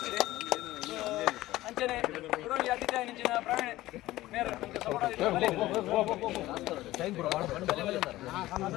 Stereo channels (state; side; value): quieter; right; 16.6 dB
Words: ಅಂಚನೆ ಗುರುವಿಗೆ ಅತಿಥಿಯಾಗಿ ನಿಂಚಿನ ಪ್ರವೀಣ್ ಮೇರೆ